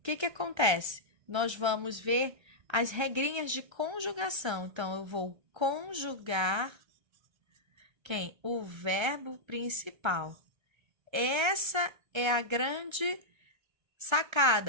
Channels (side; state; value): left; late; 1.3 ms